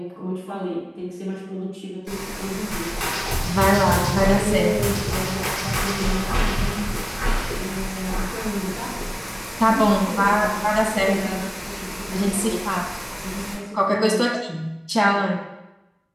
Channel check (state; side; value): identical; both; correlation 1.00